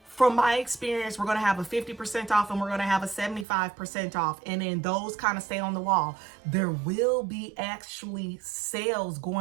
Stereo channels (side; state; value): left; drops out; at 3.5 s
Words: From my experience, we're going to have a 50% off and we're going to have a 75% off. And then those kind of stay on the wall. There will be actually sales